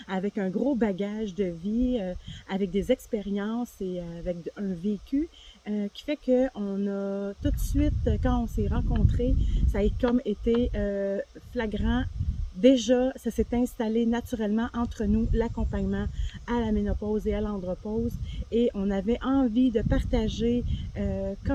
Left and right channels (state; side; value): identical; both; correlation 1.00